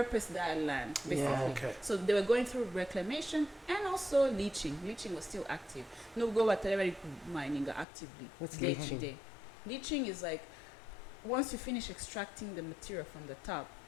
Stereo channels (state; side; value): drops out; right; at 7.9 s